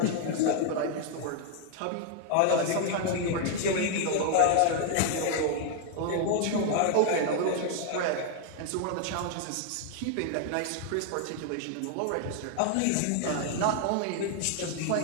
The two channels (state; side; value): different; both; correlation 0.00